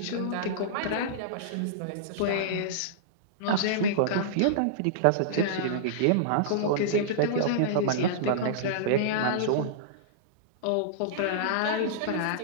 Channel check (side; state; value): both; different; correlation -0.03